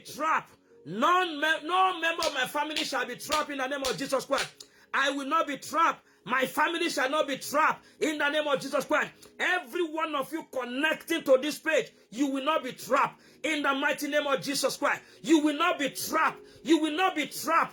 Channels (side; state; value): both; identical; correlation 1.00